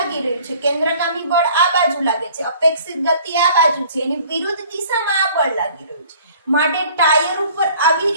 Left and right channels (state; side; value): inverted; both; correlation -0.52